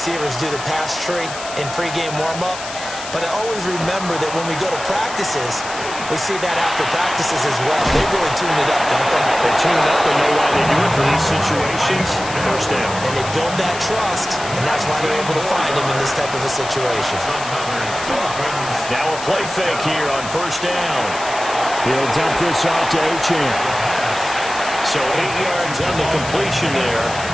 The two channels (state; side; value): noise; left; hiss, 10 dB below the sound